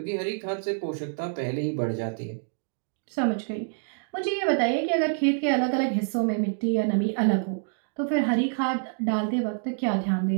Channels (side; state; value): left; silent; digital silence